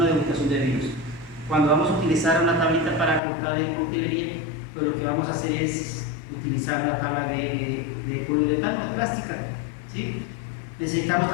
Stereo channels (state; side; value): drops out; right; at 3.2 s